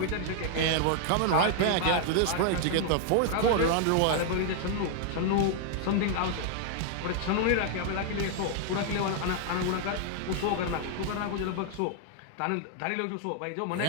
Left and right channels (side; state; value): both; different; correlation 0.00